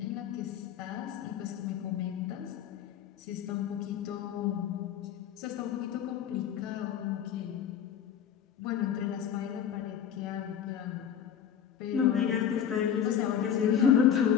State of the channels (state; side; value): quieter; right; 8.9 dB